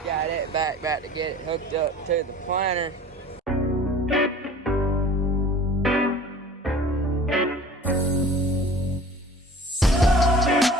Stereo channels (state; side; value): normal; both; correlation 0.44